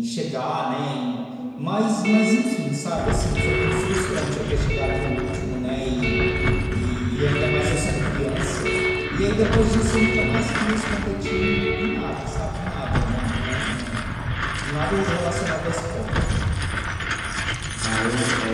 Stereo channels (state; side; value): identical; both; correlation 1.00